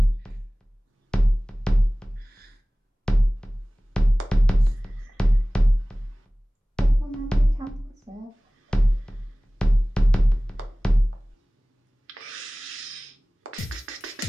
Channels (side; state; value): both; normal; correlation 0.98